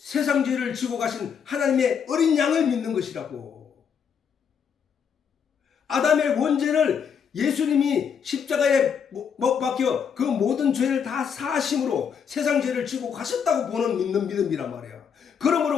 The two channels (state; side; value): quieter; right; 7.1 dB